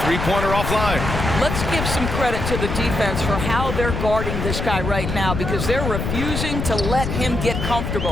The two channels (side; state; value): left; noise; rumble, 3 dB below the sound